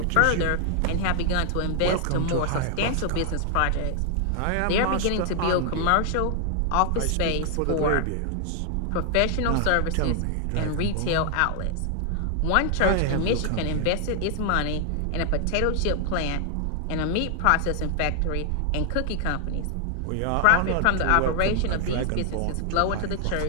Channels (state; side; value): different; both; correlation 0.00